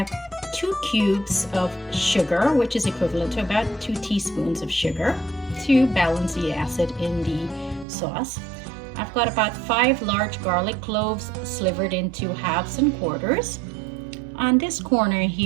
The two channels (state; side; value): drops out; left; at 7.9 s